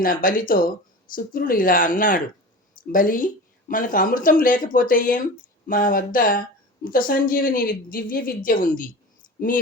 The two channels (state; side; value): normal; both; correlation 0.33